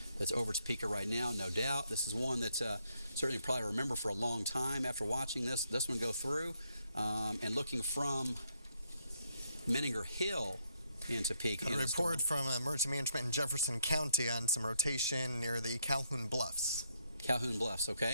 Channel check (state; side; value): inverted; both; correlation -0.76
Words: that's over Topeka right now, no doubt. This is one that certainly probably remember for a long time after watching this one go through. And looking from Menninger Hill in Topeka. A report from Emergency Management in Jefferson County on some rotation near the Calhoun Bluffs. Calhoun Bluffs,